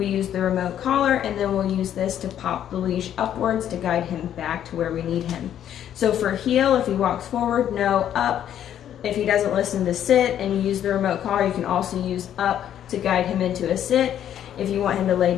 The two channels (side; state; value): right; quieter; 10.4 dB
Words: use the remote collar, and then we'll use this to pop the leash upwards to guide him back to where we need him. So for heel, if he walks forward, no, up. If he doesn't listen to sit and you use the remote collar, you can also use up to guide him into a sit. If you want him to lay